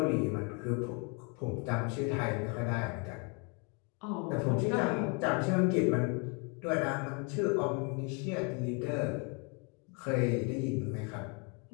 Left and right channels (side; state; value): right; quieter; 34.3 dB